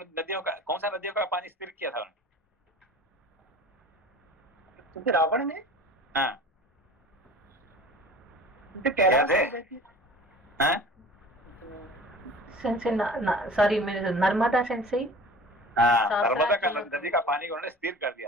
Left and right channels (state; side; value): normal; both; correlation 0.41